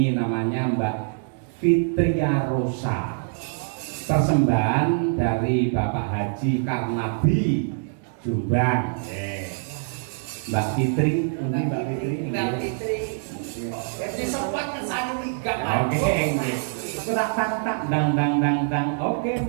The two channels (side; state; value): left; silent; digital silence